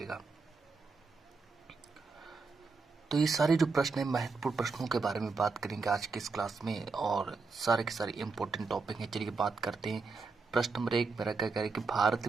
तो ये सारे जो प्रश्न है महत्वपूर्ण प्रश्नों के बारे में बात करेंगे आज की इस क्लास में और सारे के सारे इंपॉर्टेंट टॉपिक हैं। चलिए बात करते हैं। प्रश्न नंबर 1 मेरा क्या कह रहा है कि भारत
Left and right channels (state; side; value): quieter; left; 4.3 dB